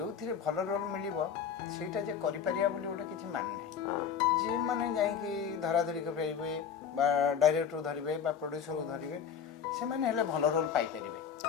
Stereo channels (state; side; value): quieter; right; 7.5 dB